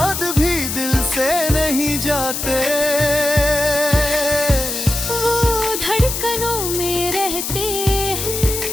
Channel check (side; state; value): left; noise; hiss, 4 dB below the sound